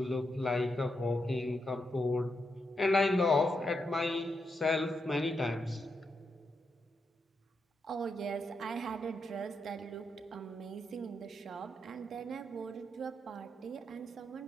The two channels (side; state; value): both; normal; correlation 0.83